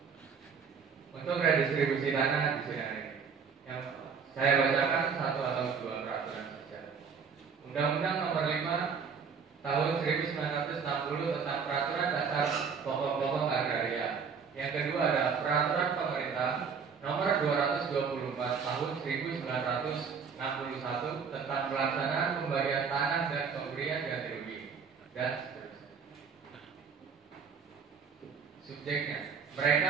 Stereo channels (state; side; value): quieter; left; 6.1 dB